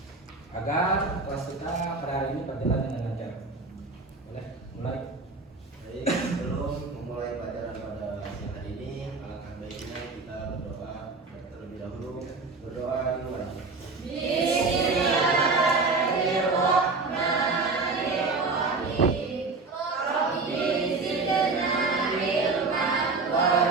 agar kelas kita pada hari ini berjalan dengan lancar. Boleh mulai? Baik, sebelum memulai pelajaran pada siang hari ini, alangkah baiknya kita berdoa terlebih dahulu. Berdoa di luar. Bismillahirrahmanirrahim. Rabbi zidna ilman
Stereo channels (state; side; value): quieter; left; 3.9 dB